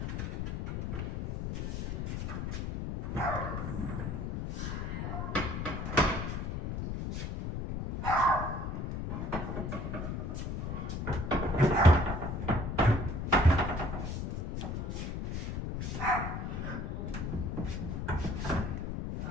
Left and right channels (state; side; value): noise; left; rumble, 3 dB below the sound